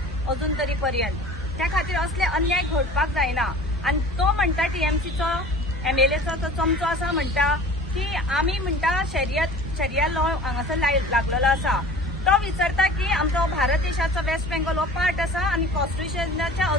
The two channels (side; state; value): both; normal; correlation 0.42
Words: अजून तरी पर्यंत। त्या खातीर असले अन्याय घडपाक जायना आनी तो म्हणटा TMCचो MLAचो तो चमचो आसा म्हणटा की आमी म्हणटा शरिया लॉ हांगासर लागलेलो आसा। तो विचारता की आमचो भारत देशाचो वेस्ट बेंगॉल हो पार्ट आसा आनी कॉन्स्टिट्युशनाच्या